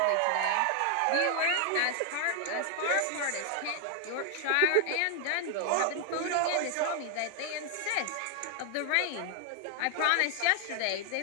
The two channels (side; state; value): both; different; correlation 0.00